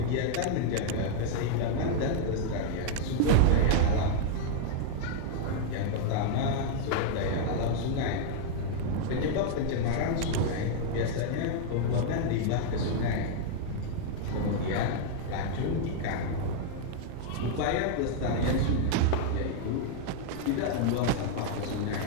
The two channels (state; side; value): different; both; correlation -0.01